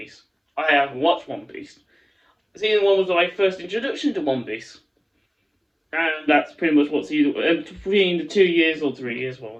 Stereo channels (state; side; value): identical; both; correlation 1.00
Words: I haven't watched One Piece. Season 1 was my first introduction to One Piece. And that's pretty much what season between the 2 years or 3 years, well,